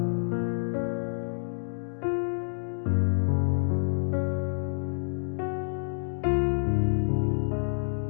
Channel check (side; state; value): right; silent; digital silence